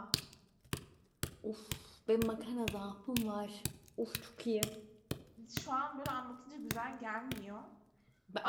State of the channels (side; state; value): both; identical; correlation 1.00